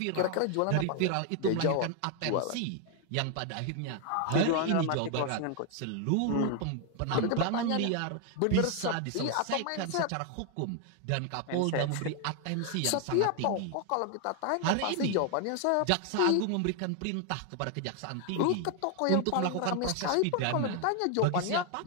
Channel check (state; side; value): different; both; correlation 0.00